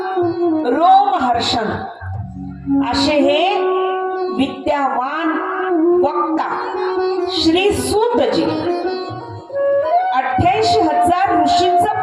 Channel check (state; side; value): identical; both; correlation 1.00